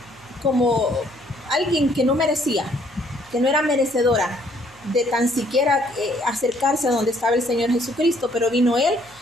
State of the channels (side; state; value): left; noise; hum, 29 dB below the sound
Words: como alguien que no merecía, que no era merecedora de tan siquiera acercarse a donde estaba el Señor Jesucristo, pero vino Él